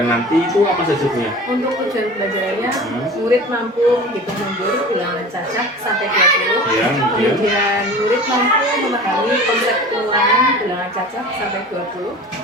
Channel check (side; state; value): both; normal; correlation 0.38